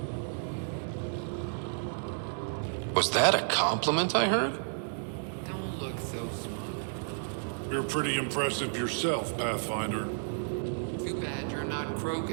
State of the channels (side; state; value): left; silent; digital silence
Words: Was that a compliment I heard? Don't look so smug. You're pretty impressive yourself, Pathfinder. Too bad you're not